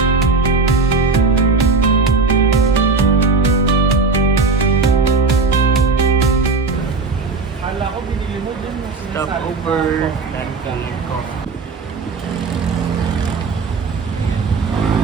Kala ko binili mo din yung Stop over. Pancake coffee.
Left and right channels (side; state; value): left; quieter; 4.1 dB